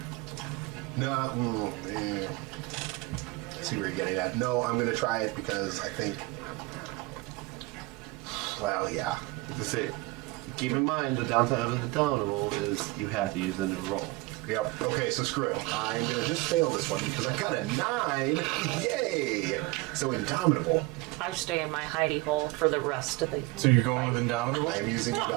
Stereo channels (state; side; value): quieter; left; 21.7 dB